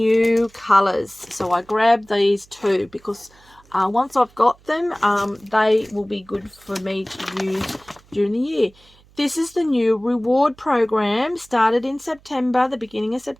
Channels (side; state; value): right; noise; hum, 29 dB below the sound